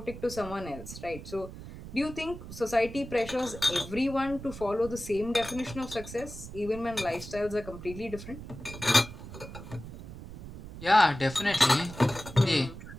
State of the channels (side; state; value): right; noise; rumble, 12 dB below the sound